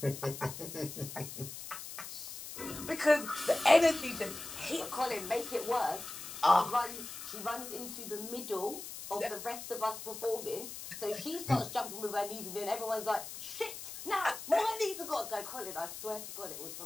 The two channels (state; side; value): noise; left; hiss, 10 dB below the sound